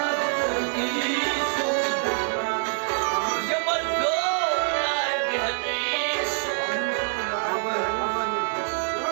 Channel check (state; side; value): silent; left; 56 dB below the other